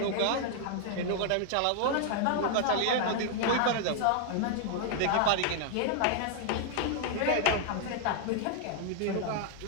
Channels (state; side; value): different; both; correlation 0.00